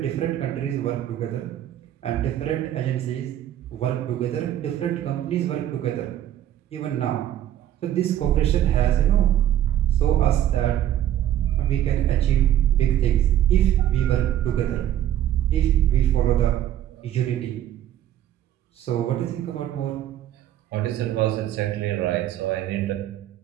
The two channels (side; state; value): left; quieter; 11.8 dB